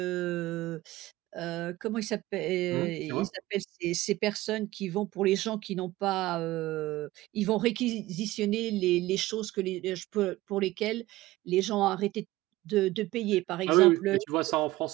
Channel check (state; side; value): quieter; left; 17.8 dB